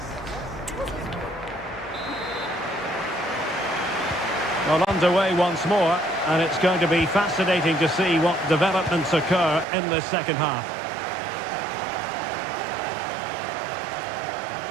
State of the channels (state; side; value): drops out; left; at 9.7 s